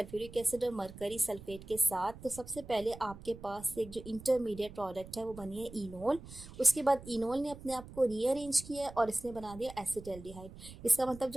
एसिड और मरकरी सल्फेट के साथ। तो सबसे पहले आपके पास एक जो इंटरमीडिएट प्रोडक्ट है वो बनी है इनोल। उसके बाद इनोल ने अपने आप को रीअरेंज किया और इसने बना दिया एसिटाल्डिहाइड। इसका मतलब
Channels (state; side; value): noise; right; rumble, 15 dB below the sound